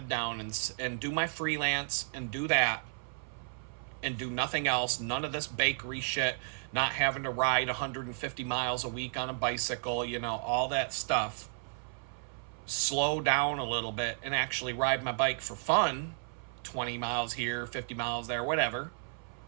down and do my freelance and do that and do nothing else. None of this bakery shit, not having to ride 150 miles a week on a bicycle, you know, all that stuff. Slow down a little bit and actually ride my bike for fun. 20 miles here, 50 miles there, whatever.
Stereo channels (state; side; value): silent; left; 56 dB below the other